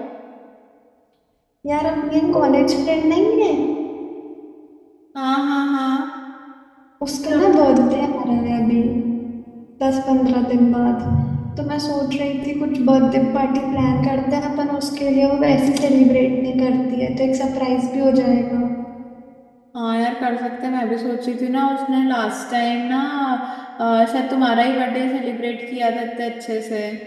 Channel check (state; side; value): identical; both; correlation 1.00